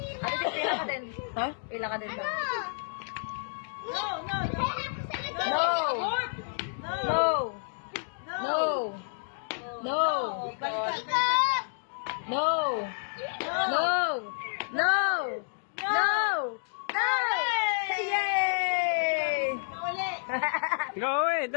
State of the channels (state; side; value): silent; right; digital silence